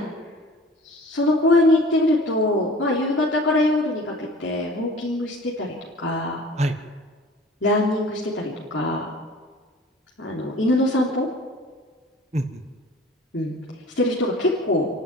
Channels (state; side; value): normal; both; correlation 0.45